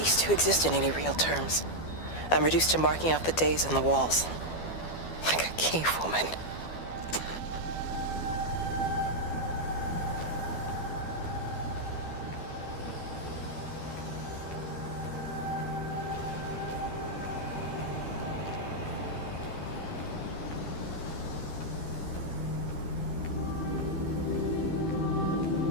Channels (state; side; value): late; right; 12 ms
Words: to exist in any real terms. I'm reduced to marking out the days on the walls. Like a cave woman.